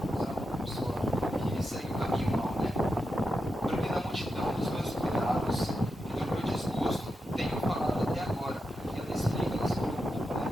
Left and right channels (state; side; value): normal; both; correlation 0.87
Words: pessoa que segue o caminho mal, né? Porque na multidão dos meus cuidados e do meu desgosto tenho falado até agora. E ela explica, ela se preocupa, né?